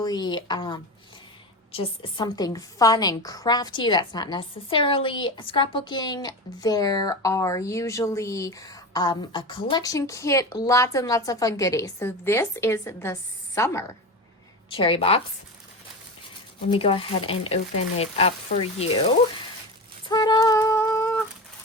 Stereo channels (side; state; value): both; normal; correlation 0.24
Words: just something fun and crafty that's not necessarily scrapbooking. There are usually a collection kit, lots and lots of fun goodies. So this is the summer cherry box. Let me go ahead and open it up for you. Ta-da!